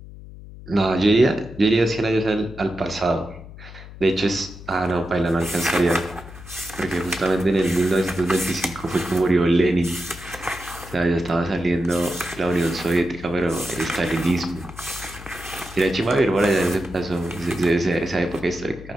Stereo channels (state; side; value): noise; left; hum, 16 dB below the sound